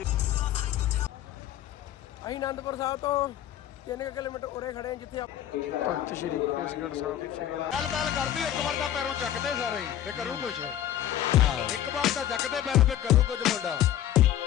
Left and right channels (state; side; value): quieter; right; 11.6 dB